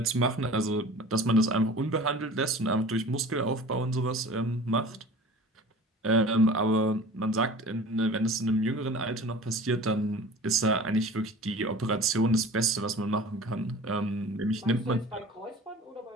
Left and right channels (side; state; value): both; normal; correlation 0.41